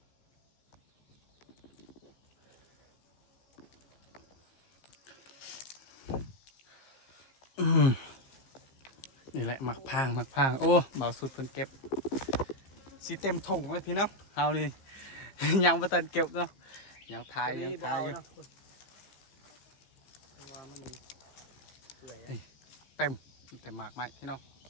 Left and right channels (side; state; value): right; late; 15 ms